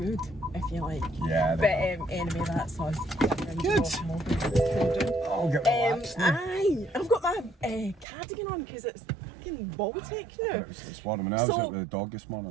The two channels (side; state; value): left; drops out; at 8.1 s